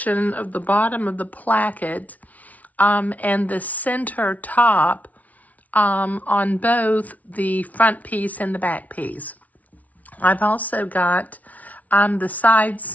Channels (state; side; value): late; right; 0.071 ms